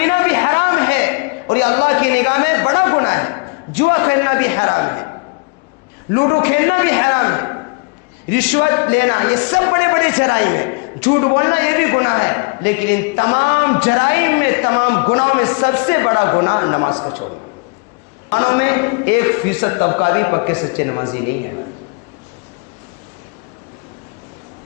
بھی حرام ہے اور یہ اللہ کی نگاہ میں بڑا گناہ ہے. جوا کھیلنا بھی حرام ہے, لوڈو کھیلنا بھی حرام ہے, رشوت لینا یہ سب بڑے بڑے جرائم ہیں, جھوٹ بولنا یہ بھی گناہ ہے. لیکن ان تمام جرائم میں, تمام گناہوں میں سب سے بڑا گناہ نماز کو چھوڑنا. مسلمانوں میں 1% طبقہ بھی پکے سچے نمازی نہیں ہے.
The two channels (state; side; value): quieter; right; 32.4 dB